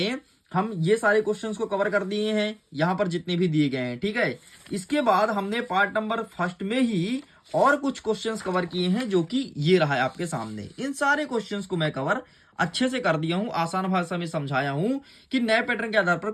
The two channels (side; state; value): both; identical; correlation 1.00